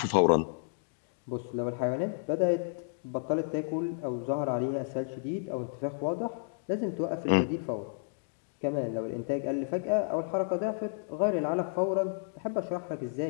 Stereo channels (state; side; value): silent; right; digital silence